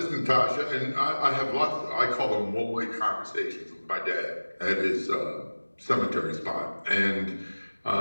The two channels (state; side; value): inverted; both; correlation -1.00